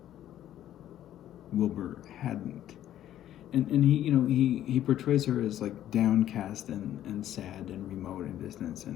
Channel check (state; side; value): quieter; right; 12.0 dB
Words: Wilbur hadn't. And he portrays her as like downcast and sad and remote and distant,